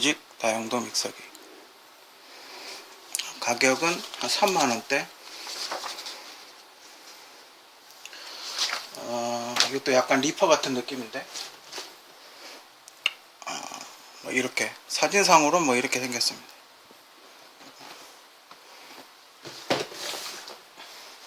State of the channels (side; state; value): both; identical; correlation 1.00